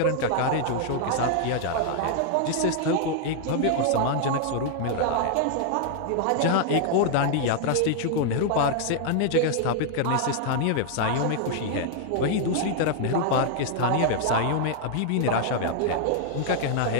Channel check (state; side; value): different; both; correlation 0.00